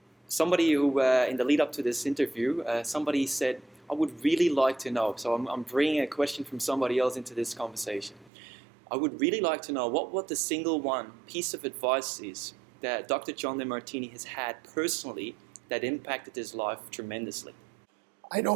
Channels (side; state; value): left; drops out; at 8.3 s